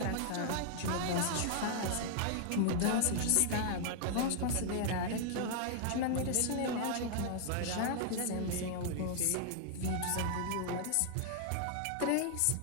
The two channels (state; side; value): different; both; correlation 0.00